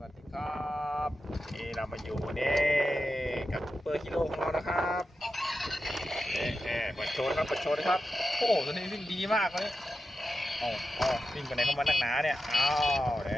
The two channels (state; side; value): normal; both; correlation 0.91